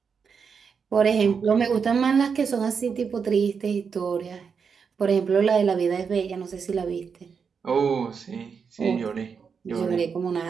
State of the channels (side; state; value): left; quieter; 6.1 dB